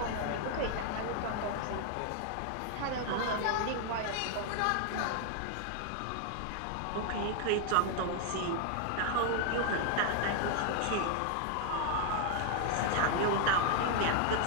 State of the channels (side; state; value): both; different; correlation 0.00